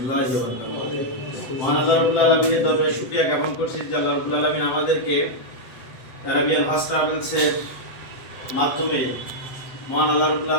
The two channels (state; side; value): late; right; 7.8 ms